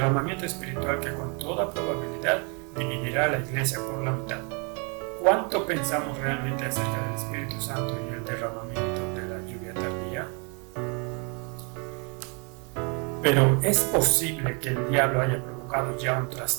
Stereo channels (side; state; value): left; quieter; 34.8 dB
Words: espiritual que con toda probabilidad dividirá a la iglesia por la mitad. ¿Cuánto pensamos realmente acerca del Espíritu Santo y el derramamiento de la lluvia tardía? Pero ¿es posible que el diablo haya provocado ya un